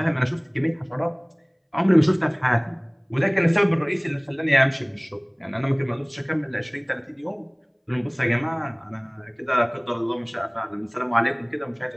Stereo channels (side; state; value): both; identical; correlation 1.00